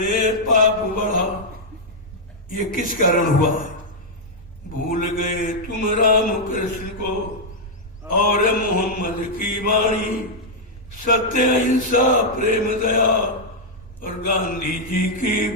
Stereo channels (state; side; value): normal; both; correlation -0.04